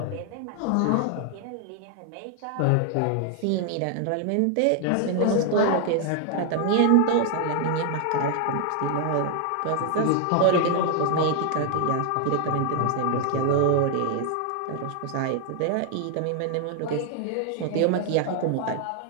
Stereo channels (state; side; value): different; both; correlation 0.00